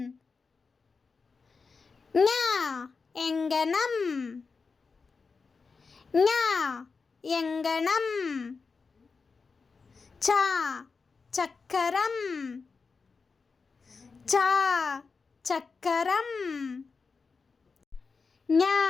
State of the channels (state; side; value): quieter; right; 4.8 dB